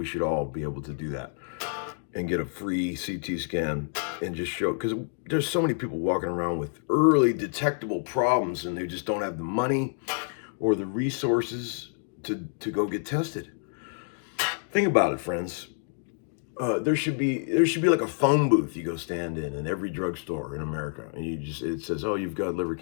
should all be able to do that and get a free CT scan and just show, because there's so many people walking around with early detectable problems and they just don't have the money or the resources to go get tested. Think about it, friends. there should be like a phone booth you go stand in every drugstore in America, and it says, oh, you've got liver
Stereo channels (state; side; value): silent; right; digital silence